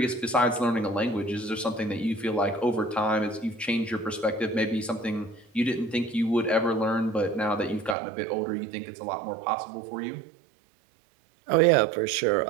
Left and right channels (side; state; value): left; drops out; at 8.0 s